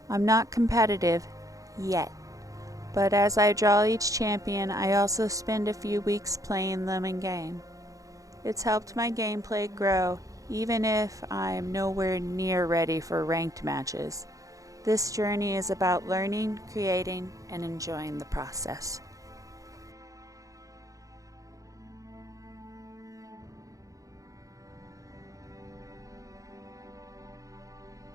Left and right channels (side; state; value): left; late; 0.16 ms